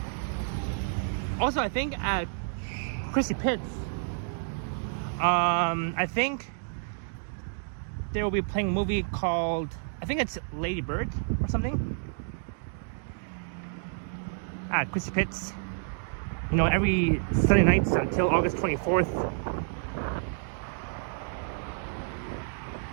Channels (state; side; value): silent; left; digital silence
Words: Also, I think at Chrissy Pitts, I think they will be playing a movie called, I think it's Lady Bird or something. At Chrissy Pitts, you know, every Sunday nights until August 24th.